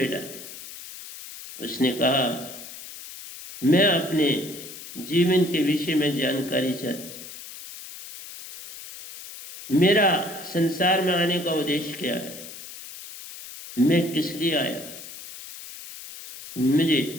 उसने कहा, मैं अपने जीवन के विषय में जानकारी चाहता। मेरा संसार में आने का उद्देश्य क्या है? मैं किस लिए आया? मुझे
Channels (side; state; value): left; noise; hiss, 14 dB below the sound